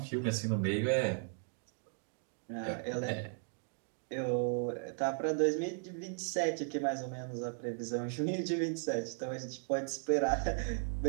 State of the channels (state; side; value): silent; left; 54 dB below the other